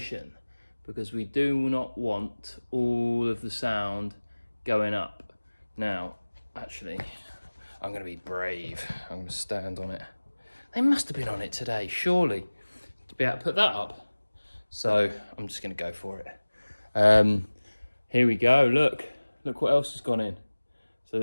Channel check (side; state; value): both; inverted; correlation -1.00